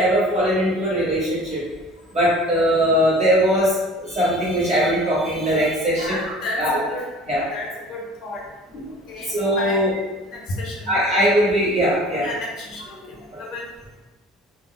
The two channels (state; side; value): normal; both; correlation 0.45